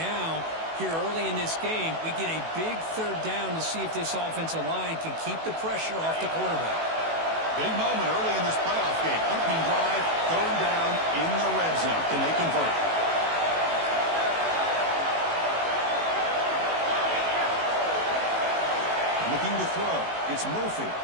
here early in this game, we get a big third down to see if this offensive line can keep the pressure off the quarterback. Big moment early in this playoff game. Opening drive, third down in the red zone. Can they convert? Looking to throw. It's Murphy.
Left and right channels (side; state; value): left; late; 18 ms